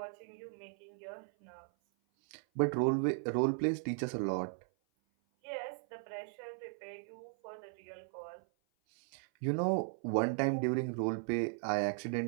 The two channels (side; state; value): left; silent; 53 dB below the other